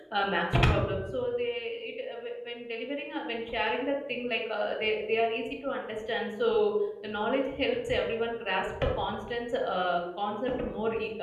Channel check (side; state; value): both; identical; correlation 1.00